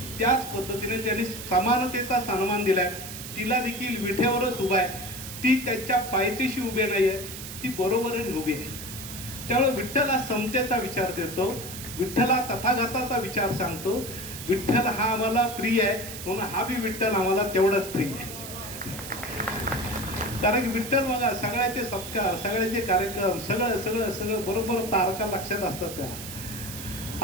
त्याच पद्धतीने त्यांनी समानतेचा सन्मान दिलाय. तिला देखील विटेवरच उभा आहे. ती त्यांच्या पायथ्याशी उभी नाहीये. ती बरोबरीने उभी आहे. त्यामुळे विठ्ठल हा समतेचा विचार देतो. विठ्ठला तथागताचा विचार सांगतो. विठ्ठल हा आम्हाला प्रिय आहे म्हणून हा बी विठ्ठल आम्हाला तेवढाच प्रिय आहे. कारण की विठ्ठल बघा सगळ्याचे सत्कार सगळ्याचे कार्यक्रम सगळं सगळं सगळं बरोबर तारखा लक्षात असतात त्याला.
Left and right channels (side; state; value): right; noise; hiss, 10 dB below the sound